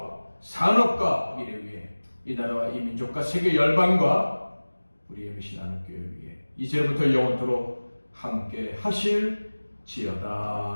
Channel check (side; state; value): both; inverted; correlation -1.00